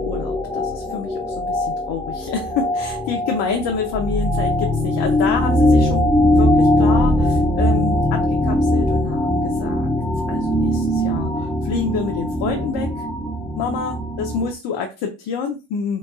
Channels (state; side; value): normal; both; correlation 0.63